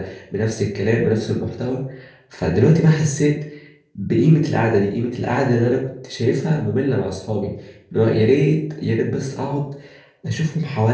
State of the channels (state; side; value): identical; both; correlation 1.00